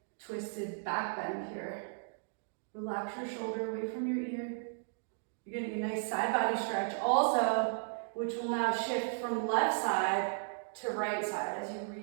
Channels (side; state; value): left; silent; digital silence